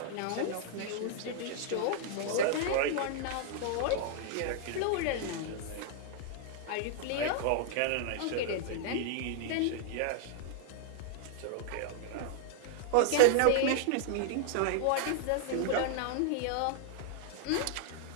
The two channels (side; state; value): both; different; correlation 0.00